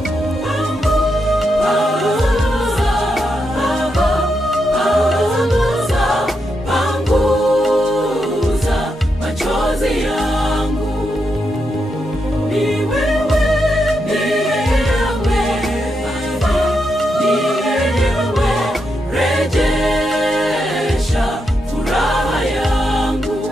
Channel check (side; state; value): both; normal; correlation 0.83